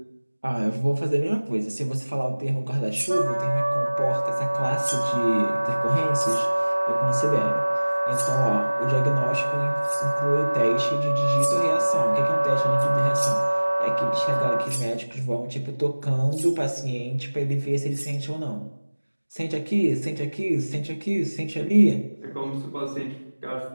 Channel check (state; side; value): inverted; both; correlation -1.00